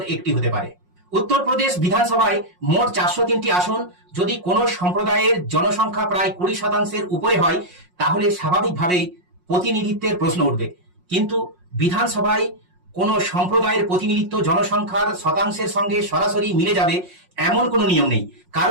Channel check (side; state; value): left; late; 5.5 ms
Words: একটি হতে পারে। উত্তরপ্রদেশ বিধানসভায় মোট 403টি আসন। যদি কোনো সম্প্রদায়ের জনসংখ্যা প্রায় 20%-এর উপরে হয়, তাহলে স্বাভাবিকভাবেই প্রতিনিধিত্বের প্রশ্ন উঠবে। কিন্তু বিধানসভায় কোনো সম্প্রদায়ের প্রতিনিধিত্ব জনসংখ্যার শতাংশের সঙ্গে সরাসরি মিলে যাবে এমন কোনো নিয়ম নেই,